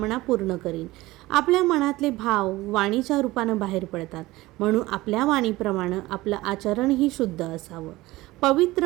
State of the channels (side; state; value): left; quieter; 18.9 dB